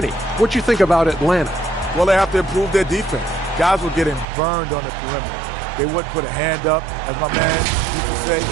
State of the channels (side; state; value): left; drops out; at 4.2 s